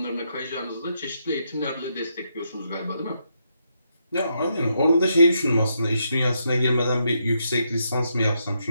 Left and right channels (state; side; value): inverted; both; correlation -0.79